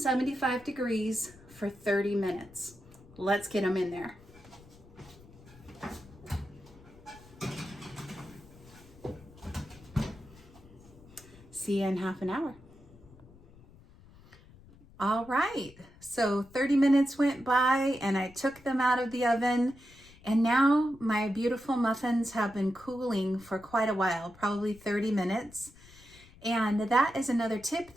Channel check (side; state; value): left; noise; rumble, 23 dB below the sound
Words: degrees for 30 minutes. Let's get them in there. See you in half an hour. All right, so 30 minutes went by and I took them out of the oven, and now my beautiful muffins have been cooling for quite a while, probably 30 minutes. And that is another tip